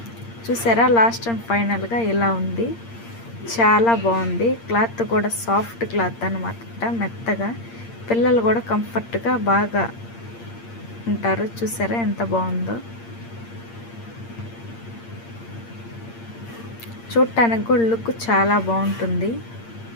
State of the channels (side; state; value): right; late; 8.7 ms